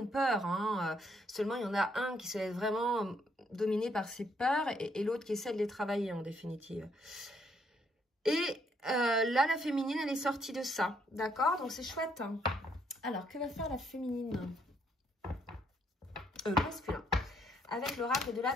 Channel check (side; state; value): both; normal; correlation 0.71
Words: peur. Hein. Seulement, il y en a un qui se laisse vraiment dominer par ses peurs et l'autre qui essaie de les travailler en définitive. Et là, la féminine, elle est sortie de ça. D'accord? Donc, c'est chouette. Hein. Alors, que va faire la féminine? Masculin. Avec l'oracle de la